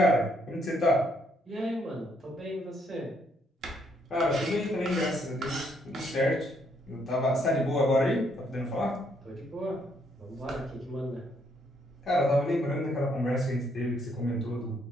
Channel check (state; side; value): normal; both; correlation 0.71